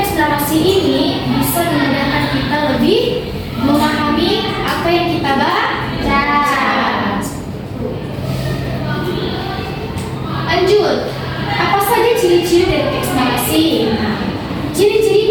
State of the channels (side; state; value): both; identical; correlation 1.00